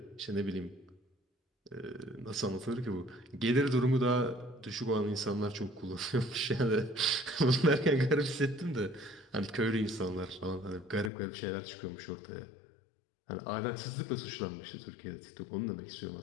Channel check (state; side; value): drops out; right; at 11.1 s